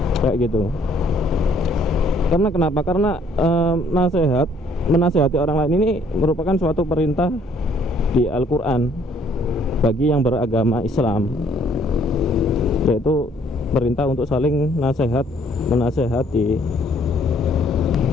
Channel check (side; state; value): both; normal; correlation 0.63